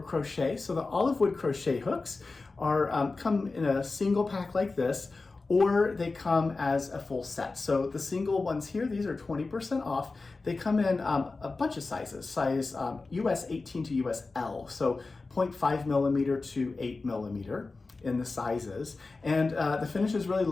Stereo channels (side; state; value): right; quieter; 3.7 dB